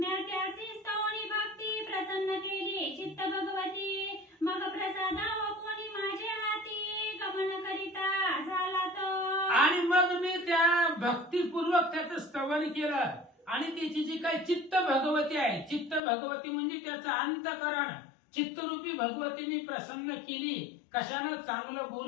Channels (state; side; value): drops out; right; at 16.0 s